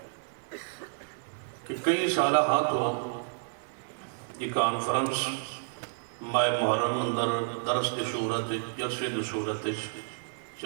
کہ کئی سالہ ہاں تو یہ کانفرنس ماہ محرم اندر درس کی صورت جلسے کی صورت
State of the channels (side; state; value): left; silent; 58 dB below the other